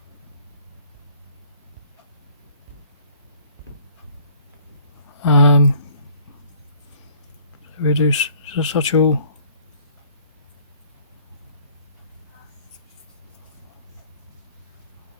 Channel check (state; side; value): inverted; both; correlation -0.56